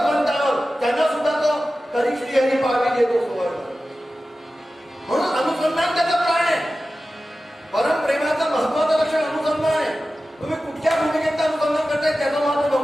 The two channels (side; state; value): both; normal; correlation 0.94